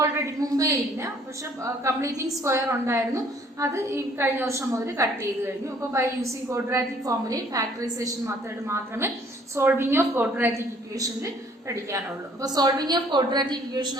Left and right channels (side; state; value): both; normal; correlation 0.59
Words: മുമ്പേ ഇല്ല, പക്ഷെ കംപ്ലീറ്റിംഗ് സ്ക്വയർ ഉണ്ടായിരുന്നു, അത് ഈ കഴിഞ്ഞ വർഷം മുതൽ കട്ട് ചെയ്ത് കഴിഞ്ഞു. അപ്പോൾ ബൈ യൂസിങ് ക്വാഡ്രാറ്റിക് ഫോർമുലയും ഫാക്ടറൈസേഷൻ മെത്തേഡ് മാത്രമേ സോൾവിങ് ഓഫ് ക്വാഡ്രാറ്റിക് ഇക്വേഷനിൽ പഠിക്കാനുള്ളൂ. അപ്പോൾ സോൾവിങ് ഓഫ് ക്വാഡ്രാറ്റിക് ഇക്വേഷൻ